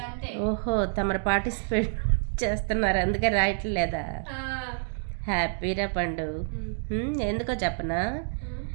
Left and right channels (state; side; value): silent; left; 59 dB below the other